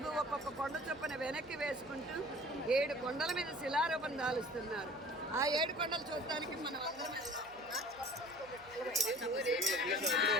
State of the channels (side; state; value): right; noise; hum, 25 dB below the sound